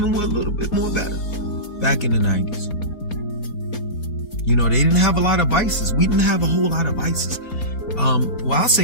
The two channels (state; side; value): late; right; 4.3 ms